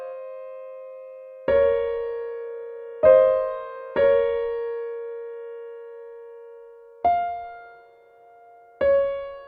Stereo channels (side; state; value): both; identical; correlation 1.00